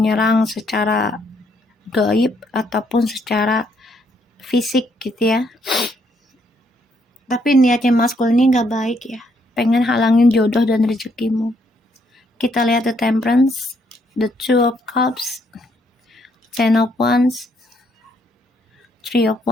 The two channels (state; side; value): normal; both; correlation 0.72